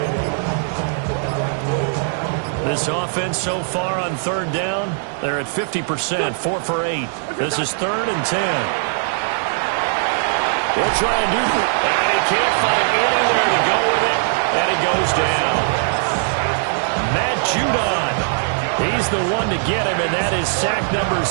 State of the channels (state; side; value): silent; left; 66 dB below the other